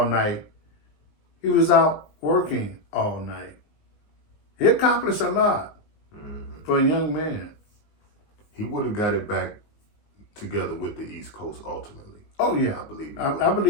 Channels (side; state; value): right; late; 19 ms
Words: night, he was out working all night. He accomplished a lot for a young man. He would have got it back together with the East Coast ultimately. Oh yeah, I believe I